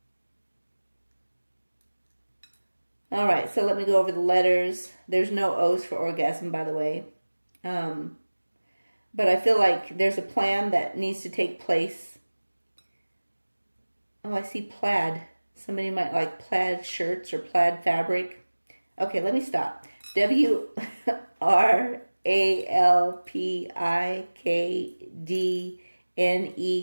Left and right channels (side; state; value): both; inverted; correlation -1.00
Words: All right, so let me go over the letters. There's no O's for orgasm, by the way. But I feel like there's a plan that needs to take place. Oh, I see plaid. Somebody might like plaid shirts or plaid fabric. Okay, let me stop.